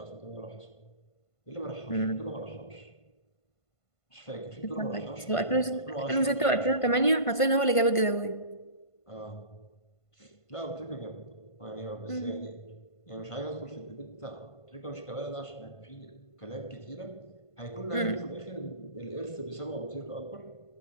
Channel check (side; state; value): right; late; 1.5 ms